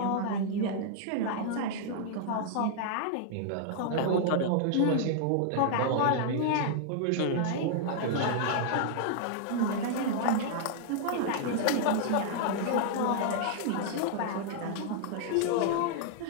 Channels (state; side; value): different; both; correlation -0.01